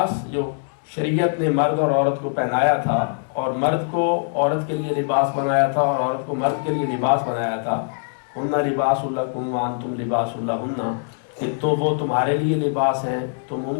جو شریعت نے مرد اور عورت کو پہنایا تھا اور مرد کو عورت کے لیے لباس بنایا تھا اور عورت کو مرد کے لیے لباس بنایا تھا، ہن لباس لکم وانتم لباس لہن، کہ تو وہ تمہارے لیے لباس ہیں تم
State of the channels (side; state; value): right; silent; digital silence